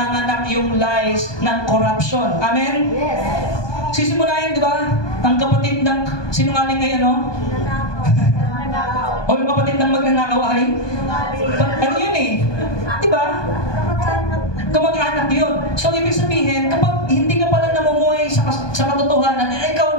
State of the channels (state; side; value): late; right; 1.2 ms